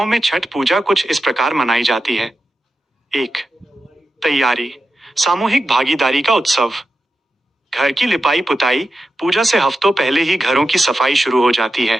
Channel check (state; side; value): normal; both; correlation 0.90